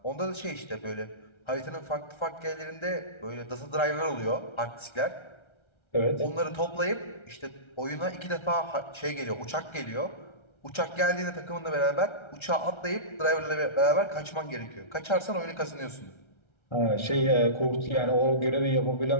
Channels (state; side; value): late; right; 1.3 ms